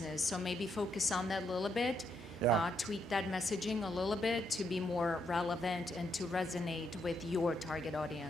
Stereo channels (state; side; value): normal; both; correlation 0.77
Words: So maybe focus on that a little bit, tweak that messaging a little bit to be more relevant and to resonate with your target